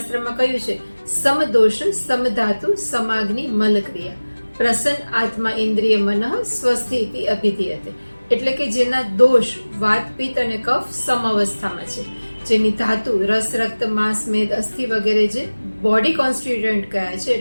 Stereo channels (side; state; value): both; inverted; correlation -1.00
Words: કહ્યું છે સમદોષ સમધાતુ સમાગ્નિ મલક્રિયા પ્રસન્ન આત્મા ઇન્દ્રિય મનઃ સ્વસ્થિતિ અભિધીયતે. એટલે કે જેના દોષ વાત પિત્ત અને કફ સમઅવસ્થામાં છે, જેની ધાતુ રસ રક્ત માંસ મેદ અસ્થિ વગેરે જે બોડી કોન્સ્ટિટ્યુઅન્ટ કયા છે,